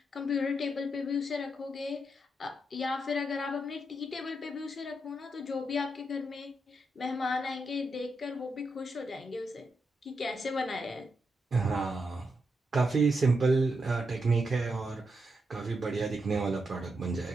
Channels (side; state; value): both; normal; correlation 0.83